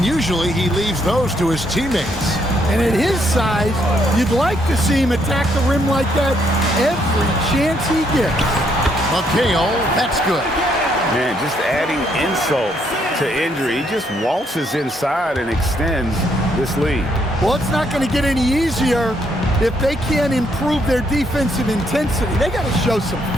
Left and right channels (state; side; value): normal; both; correlation 0.72